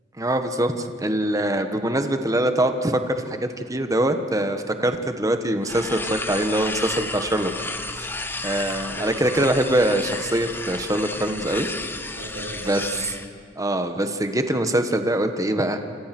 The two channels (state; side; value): normal; both; correlation 0.60